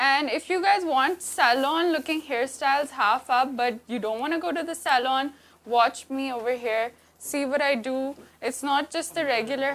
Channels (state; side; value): identical; both; correlation 1.00